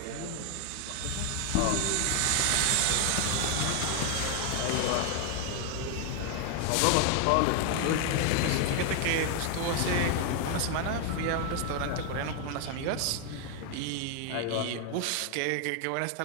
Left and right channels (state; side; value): different; both; correlation 0.00